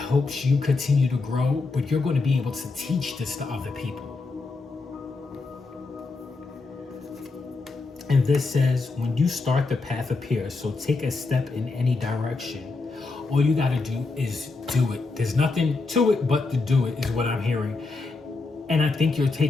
you continue to grow, but you're going to be able to teach this to other people. And this says, when you start, the path appears. So take a step in any direction. All you got to do is do it. There's nothing to it but to do it is what I'm hearing. And I think you're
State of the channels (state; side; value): quieter; right; 3.8 dB